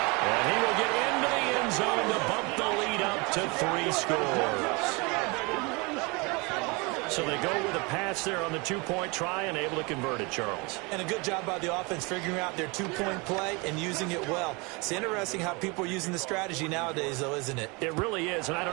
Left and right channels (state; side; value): quieter; left; 27.9 dB